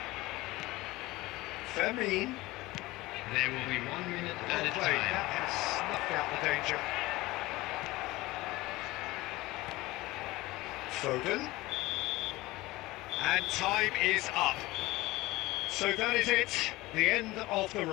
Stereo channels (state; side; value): quieter; right; 19.6 dB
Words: Fermin. There will be 1 minute at a Well played. time. That has snuffed out the danger. Foden. And time is up. So that is it, the end of the